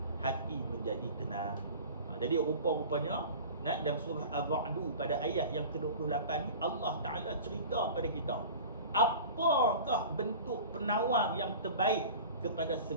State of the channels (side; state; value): both; inverted; correlation -0.38